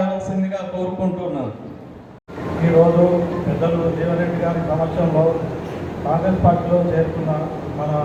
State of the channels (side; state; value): both; identical; correlation 1.00